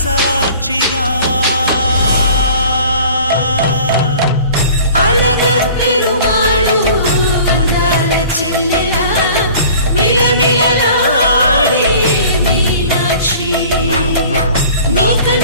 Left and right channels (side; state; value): both; inverted; correlation -0.46